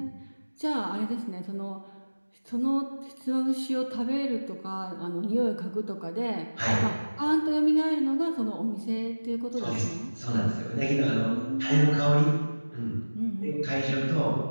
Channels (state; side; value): inverted; both; correlation -1.00